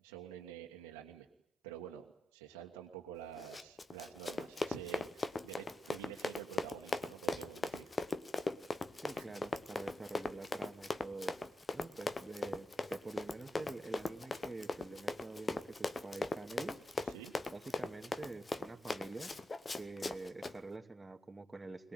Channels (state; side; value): normal; both; correlation 0.88